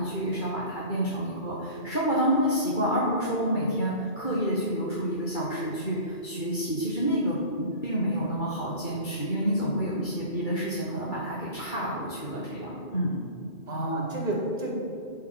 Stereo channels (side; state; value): right; late; 2.4 ms